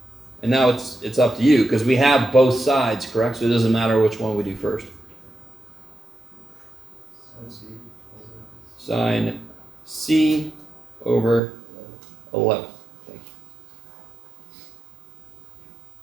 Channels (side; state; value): left; drops out; at 11.4 s